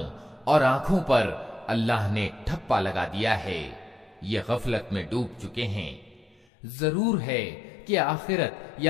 और आंखों पर अल्लाह ने ठप्पा लगा दिया है। ये गफलत में डूब चुके हैं। जरूर है कि आखिरत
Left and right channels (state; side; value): drops out; right; at 6.5 s